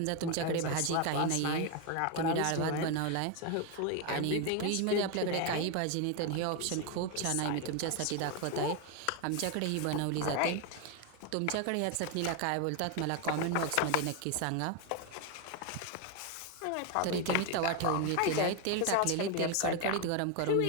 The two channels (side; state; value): both; different; correlation 0.01